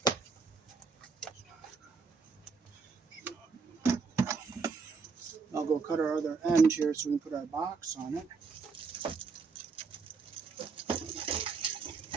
I'll go cut our other end here so we can put our box on it.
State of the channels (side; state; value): left; quieter; 4.9 dB